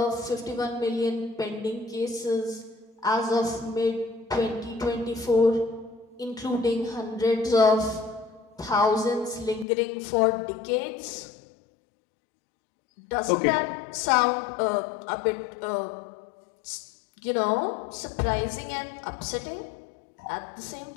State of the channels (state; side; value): drops out; right; at 9.7 s